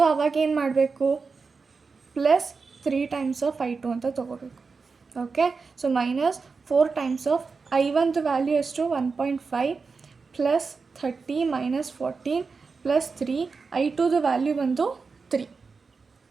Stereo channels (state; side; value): quieter; left; 4.7 dB